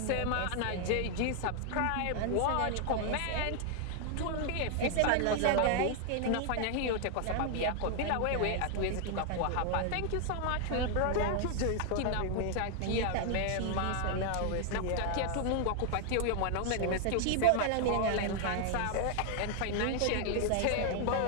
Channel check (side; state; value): both; different; correlation 0.00